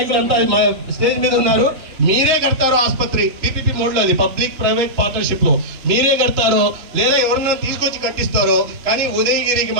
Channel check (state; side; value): late; left; 3.4 ms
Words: స్టేజ్ మీద ఉన్నారు. మీరే కడతారో ఆసుపత్రి పీపీపీ మోడ్లో, అది పబ్లిక్ ప్రైవేట్ పార్ట్నర్షిప్ లో మీరే కడతారో లేదా ఎవరన్నా తీసుకొచ్చి కట్టిస్తారో, కానీ ఉదయగిరికి